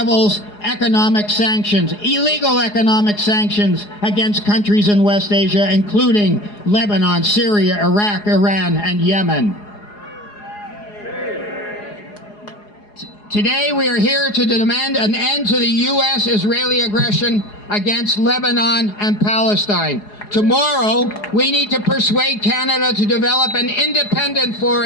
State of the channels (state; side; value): late; right; 4.8 ms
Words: economic sanctions, illegal economic sanctions against countries in West Asia, including Lebanon, Syria, Iraq, Iran, and Yemen. Today we are here to demand an end to the U.S.-Israeli aggression against Lebanon and Palestine. Tomorrow, we need to persuade Canada to develop an independent